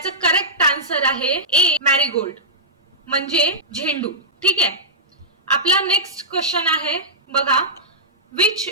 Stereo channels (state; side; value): normal; both; correlation -0.14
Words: करेक्ट आन्सर आहे ए मॅरीगोल्ड म्हणजे झेंडू. ठीक आहे, आपला नेक्स्ट क्वेश्चन आहे बघा, which